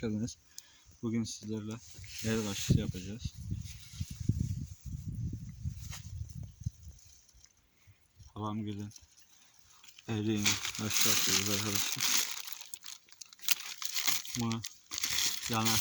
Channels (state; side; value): identical; both; correlation 1.00